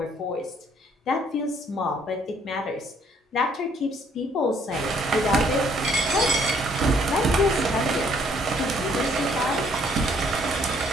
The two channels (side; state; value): both; normal; correlation 0.64